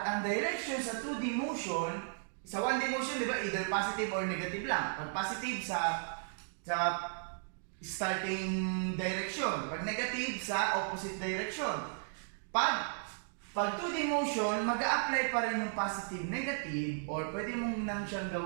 ang direction sa 2D motion, sa 1D motion, di ba, either positive or negative lang. Pag positive sa starting direction. Pag negative sa opposite direction. Pag 2D motion, mag-a-apply pa rin yung positive, negative, or pwede mo nang siyang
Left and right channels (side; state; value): left; silent; digital silence